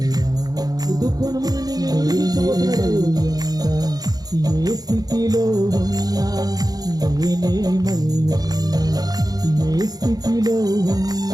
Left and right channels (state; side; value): late; left; 0.19 ms